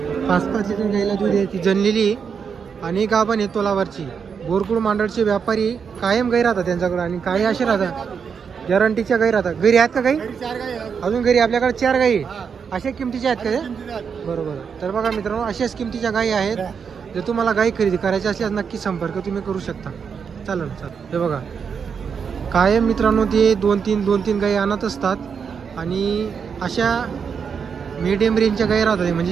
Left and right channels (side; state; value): left; quieter; 6.5 dB